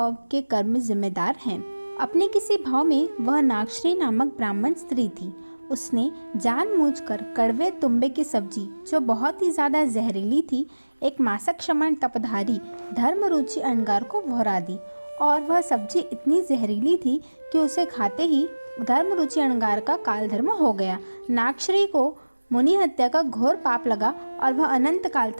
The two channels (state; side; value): inverted; both; correlation -1.00